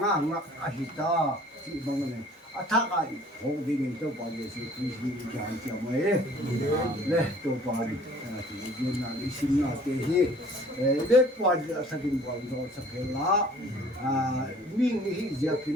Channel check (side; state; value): both; normal; correlation 0.53